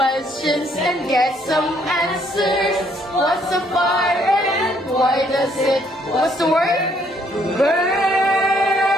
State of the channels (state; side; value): normal; both; correlation 0.67